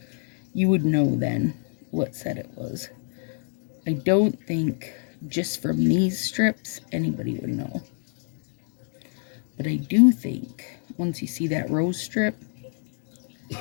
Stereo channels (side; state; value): right; silent; digital silence